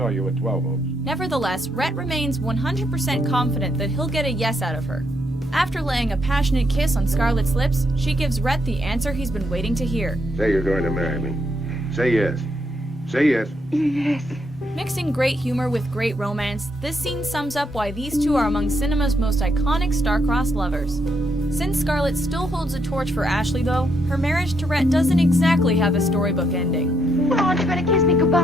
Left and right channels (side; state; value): both; normal; correlation 0.76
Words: you at 12 Oaks. Nevertheless, Rhett remains 100% confident that he'll get a yes out of her. After laying a passionate kiss on Scarlett's lips, she gives Rhett the answer he's been waiting to hear. Say you're going to marry me. Say yes. Say yes. Yes. Mixing great humor with great romance, this scene sums up why these two are among cinema's most iconic star-crossed lovers. Since Scarlett still holds a torch for Ashley, though, her marriage to Rhett doesn't exactly have a storybook ending. Well, aren't you going to kiss me